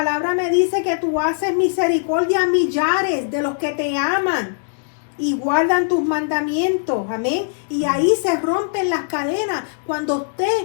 me dice que tú haces misericordia a millares de los que te aman y guardan tus mandamientos. Amén. Y ahí se rompen las cadenas. Cuando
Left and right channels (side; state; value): right; silent; digital silence